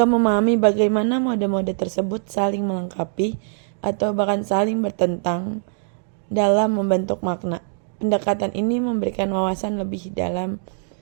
memahami bagaimana mode-mode tersebut saling melengkapi atau bahkan saling bertentang dalam membentuk makna. Pendekatan ini memberikan wawasan lebih dalam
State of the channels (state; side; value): silent; left; digital silence